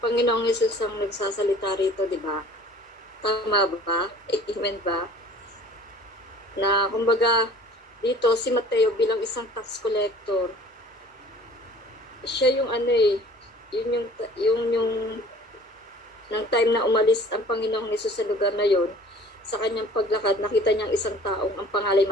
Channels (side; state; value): both; normal; correlation 0.49